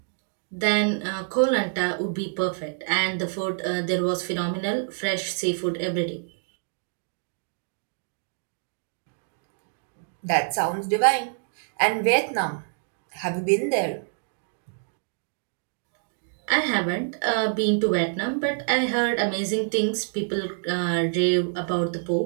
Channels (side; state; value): left; silent; digital silence